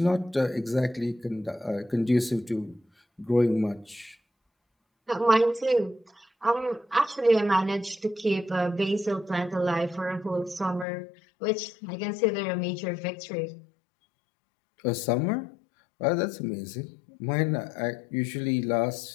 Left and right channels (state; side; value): drops out; right; at 10.9 s